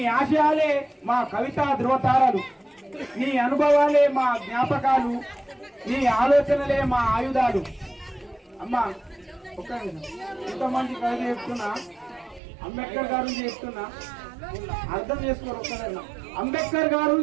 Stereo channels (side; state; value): left; drops out; at 12.4 s